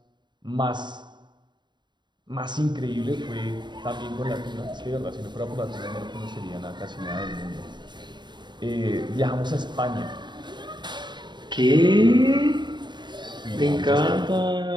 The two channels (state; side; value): late; left; 0.22 ms